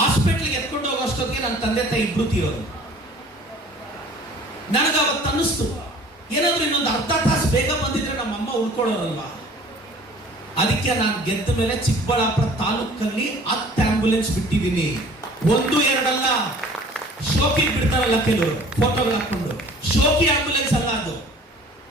ಎತ್ಕೊಂಡು ಹೋಗೋಷ್ಟೊತ್ತಿಗೆ ನನ್ನ ತಂದೆ ತಾಯಿ ಇಬ್ರು ತೀರೋರು. ನನಗೆ ಅವತ್ತು ಅನ್ನಿಸ್ತು, ಏನಾದ್ರೂ ಇನ್ನೊಂದು ಅರ್ಧ ತಾಸು ಬೇಗ ಬಂದಿದ್ರೆ ನಮ್ಮಮ್ಮ ಉಳ್ಕೊಳ್ಳೋರಲ್ವಾ. ಅದಕ್ಕೆ ನಾನು ಗೆದ್ದ ಮೇಲೆ ಚಿಕ್ಕಬಳ್ಳಾಪುರ ತಾಲೂಕಲ್ಲಿ 10 ಆಂಬ್ಯುಲೆನ್ಸ್ ಬಿಟ್ಟಿದ್ದೀನಿ. 1-2 ಅಲ್ಲ, ಶೋಕಿ ಬಿಡ್ತಾರಲ್ಲ ಕೆಲವರು ಫೋಟೋಗಳು ಹಾಕೊಂಡು, ಶೋಕಿ ಆಂಬ್ಯುಲೆನ್ಸ್ ಅಲ್ಲ ಅದು.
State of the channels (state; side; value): normal; both; correlation 0.49